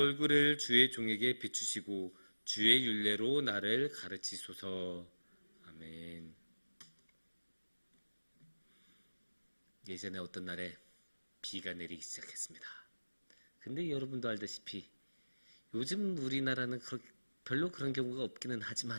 주의 종에게 비추시고 주의 율례로 나를 가르치소서. 아멘. 예전에 어떤 날에 비가 내리기 시작했습니다. 근데 여러분도 알다시피 요즘 우리나라는 별로 그런 경우가 없기는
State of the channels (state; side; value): inverted; both; correlation -1.00